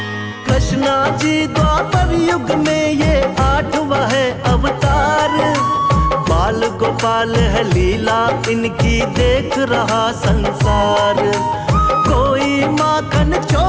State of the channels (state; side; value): identical; both; correlation 1.00